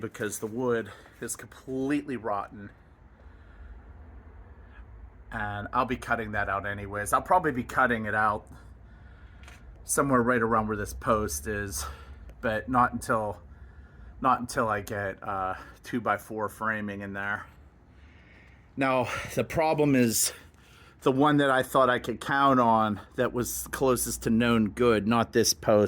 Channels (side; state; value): both; identical; correlation 1.00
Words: the wood is completely rotten. And I'll be cutting that out anyways. I'll probably be cutting it out somewhere right around where this post is, but not until I get 2x4 framing in there. Now, the problem is the one that I thought I could count on that was closest to known good, not this